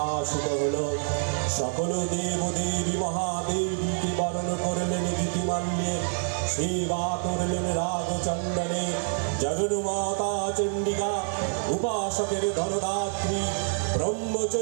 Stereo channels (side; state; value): left; silent; 60 dB below the other